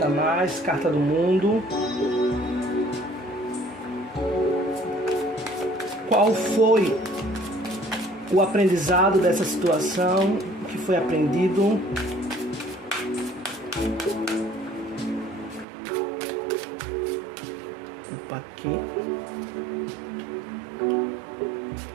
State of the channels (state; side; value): drops out; left; at 15.7 s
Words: mais. Carta do mundo. Qual foi o aprendizado dessa situação? O que foi aprendido? Opa, aqui.